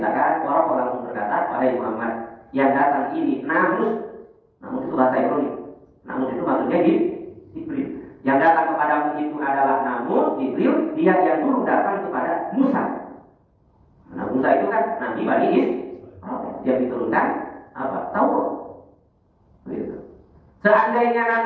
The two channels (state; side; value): identical; both; correlation 1.00